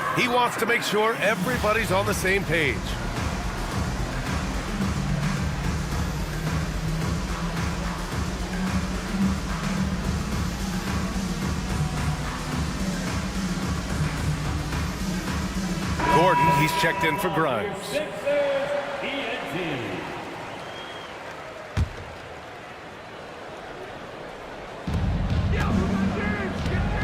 He wants to make sure everybody's on the same page. Gordon, he's checked in for Grimes.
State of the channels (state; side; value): identical; both; correlation 1.00